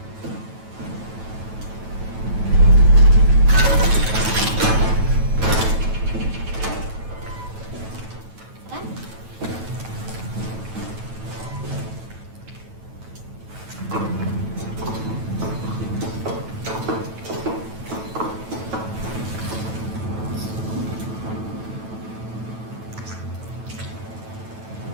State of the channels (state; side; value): late; left; 9.1 ms